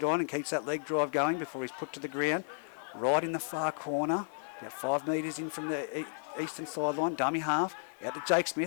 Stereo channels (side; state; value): right; silent; 56 dB below the other